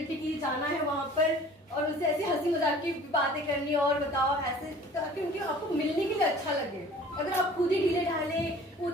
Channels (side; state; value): both; normal; correlation 0.47